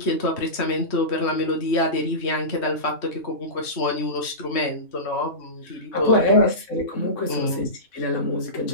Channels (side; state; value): right; late; 3.1 ms